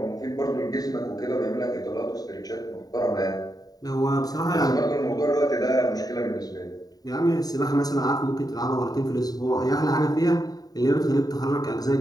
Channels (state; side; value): late; right; 0.18 ms